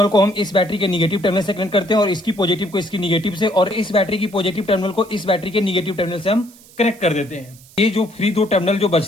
को हम इस बैटरी के निगेटिव टर्मिनल से कनेक्ट करते हैं और इसकी पॉजिटिव को इसकी निगेटिव से, और इस बैटरी की पॉजिटिव टर्मिनल को इस बैटरी के निगेटिव टर्मिनल से हम कनेक्ट कर देते हैं। ये जो फ्री 2 टर्मिनल जो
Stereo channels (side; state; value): right; noise; hiss, 24 dB below the sound